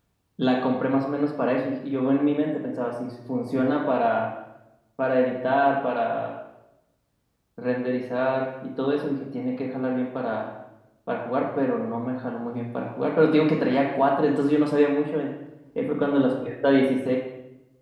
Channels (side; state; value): both; identical; correlation 1.00